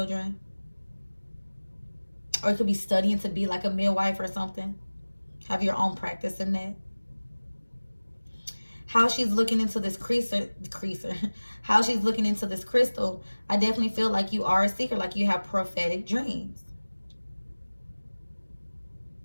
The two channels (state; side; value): inverted; both; correlation -1.00